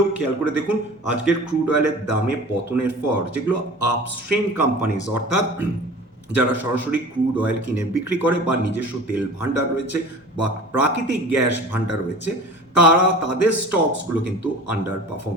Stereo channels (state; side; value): normal; both; correlation 0.40